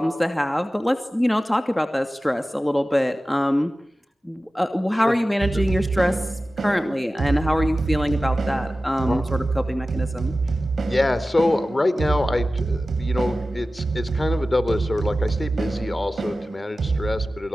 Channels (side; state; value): both; normal; correlation 0.95